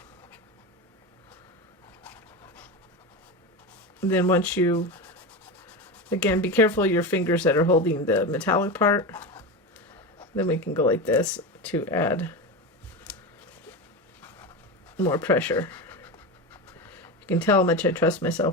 And then once you, again, be careful of your fingers that are holding the metallic part. Then we can go like this to add more pressure. You can tell how much I trust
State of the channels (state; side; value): normal; both; correlation 0.21